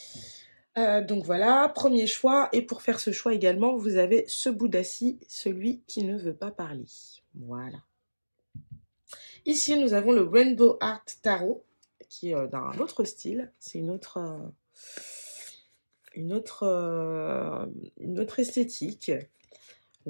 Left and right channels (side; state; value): both; inverted; correlation -1.00